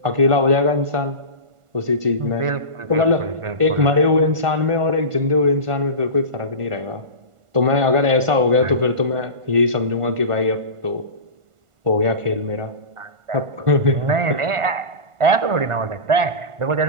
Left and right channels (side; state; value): left; late; 1.5 ms